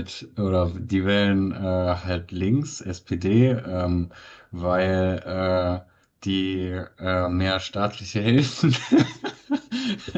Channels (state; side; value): identical; both; correlation 1.00